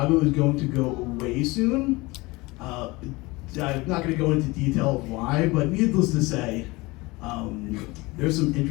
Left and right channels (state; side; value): quieter; right; 22.9 dB